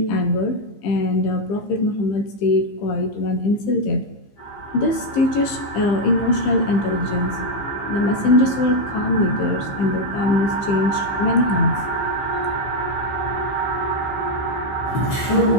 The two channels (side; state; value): right; late; 15 ms